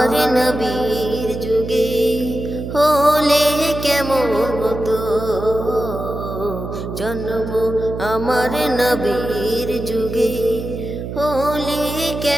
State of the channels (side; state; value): right; noise; hum, 7 dB below the sound